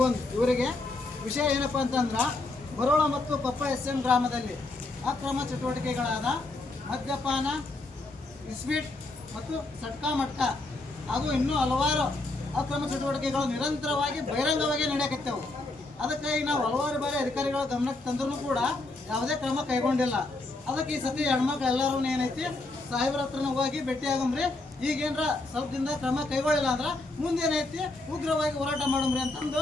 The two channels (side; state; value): right; quieter; 3.0 dB